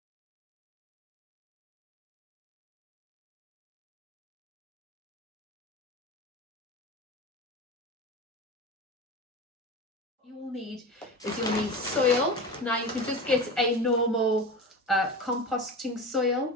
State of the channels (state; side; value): normal; both; correlation 0.28